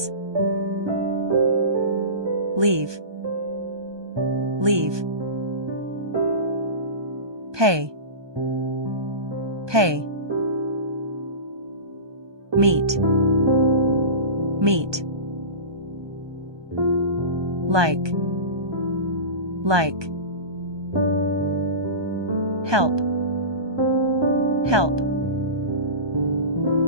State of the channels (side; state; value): left; late; 1.2 ms